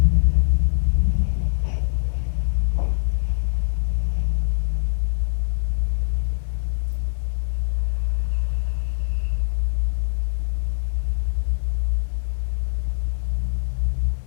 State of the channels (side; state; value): right; silent; digital silence